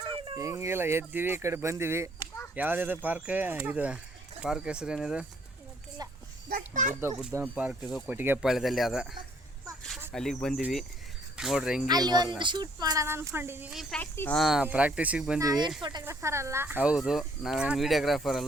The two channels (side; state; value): both; normal; correlation 0.64